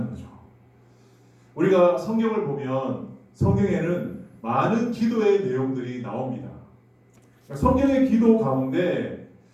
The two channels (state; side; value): identical; both; correlation 1.00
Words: 거죠. 우리가 성경을 보면 성경에는 많은 기도의 내용들이 나옵니다. 성경의 기도 가운데